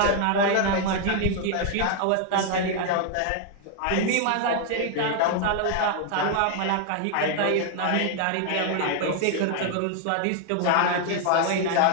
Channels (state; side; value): different; both; correlation 0.00